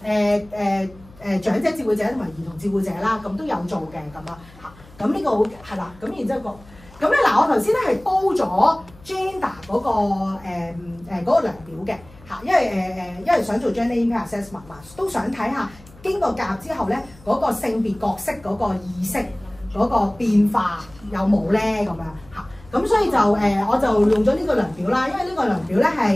長者照顧者同埋兒童照顧者啦，咁都有做嘅咁啊嚇。咁呢個好係啦，咁然之後咁咧嗱，我頭先咧係煲咗 gender 嗰個量表嘅。嚇，因為想做 gender impact assessment 嘛，都想睇下經過夾之後咧，嗰個性別角色嗰個意識嗰個變化有冇咧咁樣嚇。咁所以就我就用咗呢個量表啦，因為呢個量表咧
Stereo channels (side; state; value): left; noise; hum, 24 dB below the sound